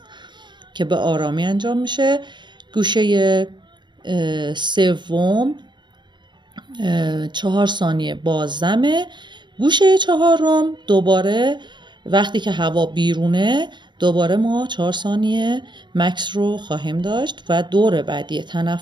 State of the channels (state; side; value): late; left; 0.22 ms